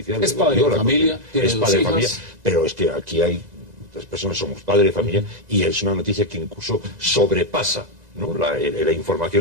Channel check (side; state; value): left; late; 2.0 ms